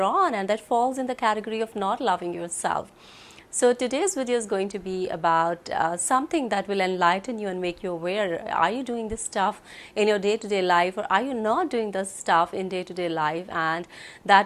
on, and that falls in the category of not loving yourself. So today's video is going to be about something that will enlighten you and make you aware. Are you doing this stuff in your day-to-day life, or are you not doing this stuff in day-to-day life? And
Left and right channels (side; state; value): both; identical; correlation 1.00